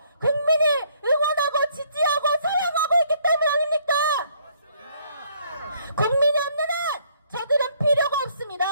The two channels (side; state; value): both; inverted; correlation -0.65